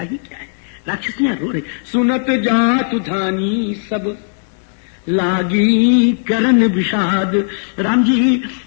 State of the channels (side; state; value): right; silent; digital silence